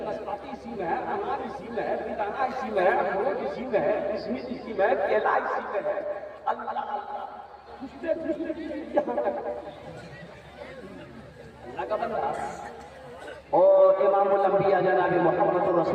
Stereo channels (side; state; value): both; identical; correlation 1.00